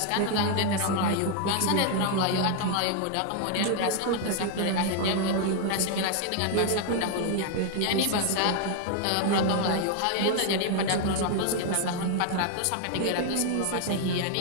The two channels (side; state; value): both; different; correlation 0.00